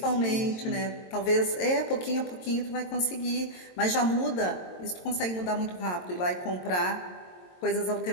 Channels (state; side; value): late; right; 22 ms